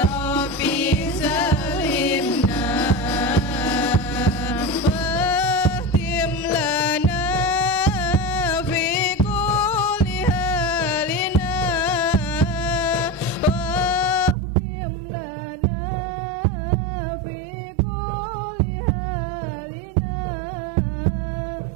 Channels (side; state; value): left; drops out; at 14.4 s